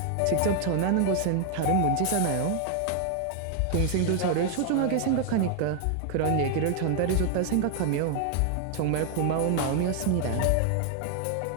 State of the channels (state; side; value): different; both; correlation 0.00